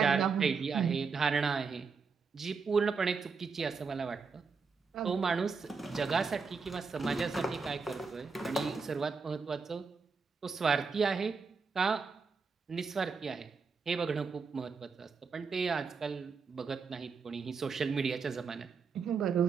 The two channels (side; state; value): left; quieter; 5.1 dB